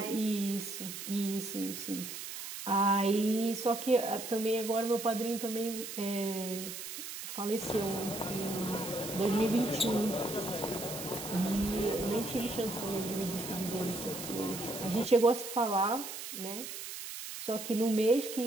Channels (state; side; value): noise; right; hiss, 8 dB below the sound